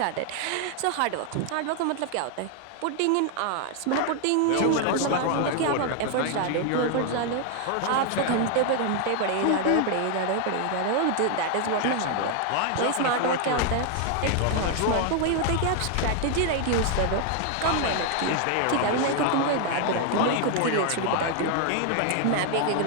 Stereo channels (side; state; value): both; different; correlation 0.00